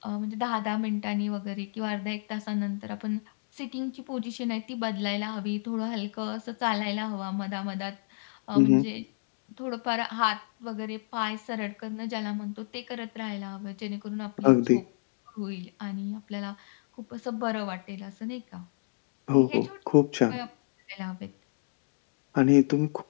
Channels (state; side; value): silent; right; digital silence